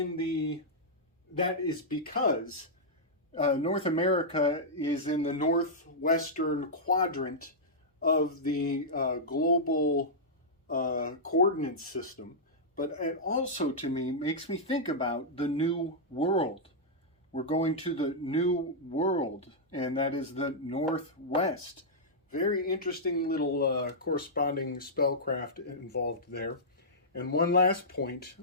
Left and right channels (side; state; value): both; normal; correlation -0.10